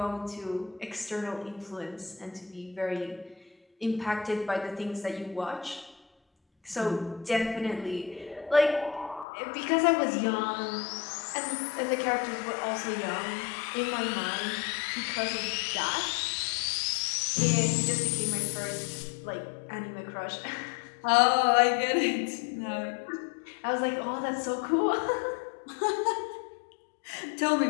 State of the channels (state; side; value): drops out; right; at 9.2 s